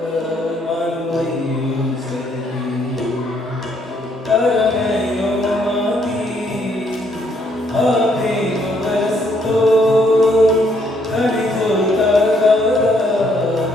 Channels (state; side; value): normal; both; correlation 0.70